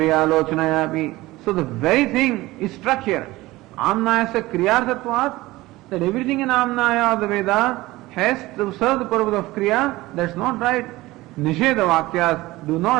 So the very thing is struck here. Amnayasya Kriyarthatvat, that everything in Amnaya of the Veda has to serve the purpose of Kriya. That's not right. Nisheda Vakyas do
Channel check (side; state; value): left; quieter; 18.9 dB